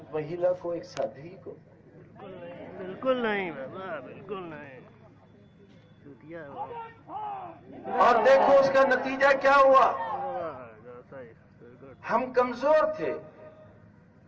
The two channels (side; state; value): both; identical; correlation 1.00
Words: مہیلا کو, ایک سادھوی کو؟ بالکل نہیں بابا, بالکل نہیں. اور دیکھو اس کا نتیجہ کیا ہوا. ہم کمزور تھے,